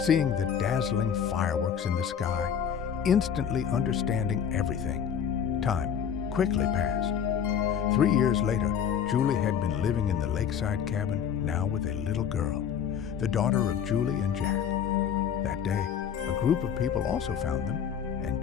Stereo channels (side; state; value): right; quieter; 8.0 dB